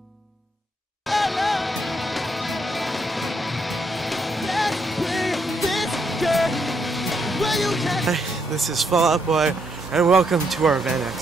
Hey, this is Fall Out Boy, and welcome to our van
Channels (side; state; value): both; normal; correlation 0.76